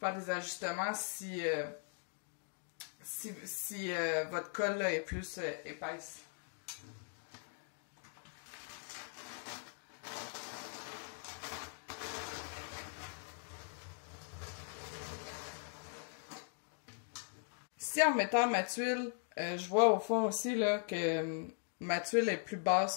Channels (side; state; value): right; silent; 51 dB below the other